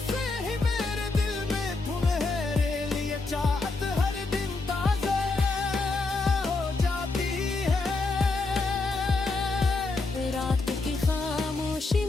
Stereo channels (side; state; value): right; quieter; 3.6 dB